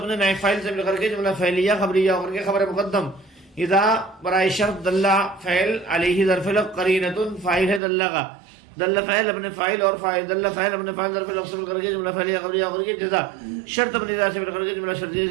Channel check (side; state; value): left; drops out; at 7.8 s